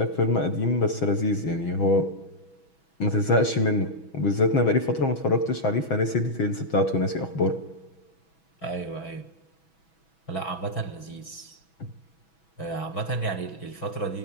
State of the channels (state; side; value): late; right; 6.1 ms